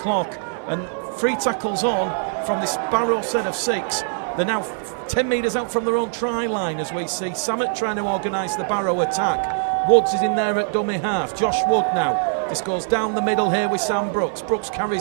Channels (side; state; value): left; silent; digital silence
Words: and 3 tackles on from this Barrow set of 6. They're now 10 metres out from their own try line, as we see Samet trying to organise the Barrow attack. Woods is in there at dummy half. Josh Wood now. This goes down the middle here with Sam Brooks. Brooks